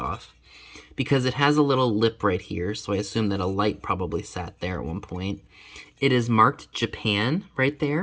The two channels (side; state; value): both; identical; correlation 1.00